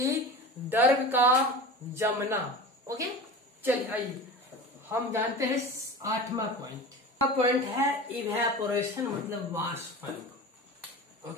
द्रव का जमना। ओके, चलिए आइए हम जानते हैं 8वां पॉइंट। पॉइंट है इवेपोरेशन, मतलब वाष्पन।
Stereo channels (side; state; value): both; normal; correlation 0.33